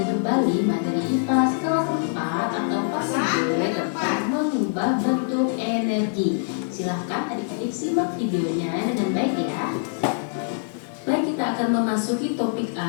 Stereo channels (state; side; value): silent; right; digital silence